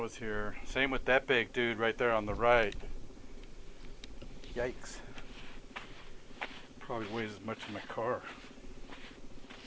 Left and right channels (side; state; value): both; identical; correlation 1.00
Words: here. Same with that big dude right there on the right. Yikes. Probably weighs as much as my car.